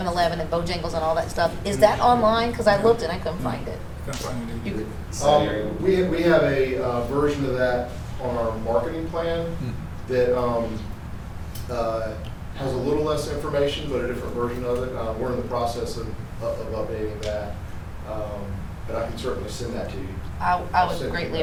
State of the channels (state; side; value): identical; both; correlation 1.00